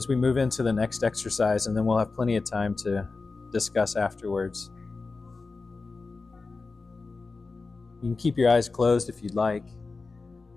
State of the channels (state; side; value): quieter; right; 4.0 dB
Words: we move into the next exercise, and then we'll have plenty of time to discuss afterwards. You can keep your eyes closed if you'd like.